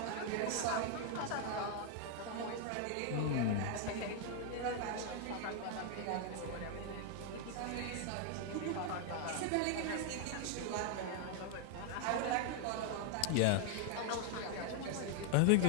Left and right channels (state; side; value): different; both; correlation 0.00